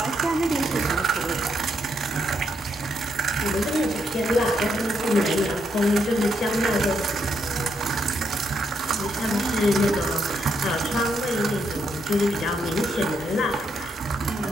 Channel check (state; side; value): normal; both; correlation 0.77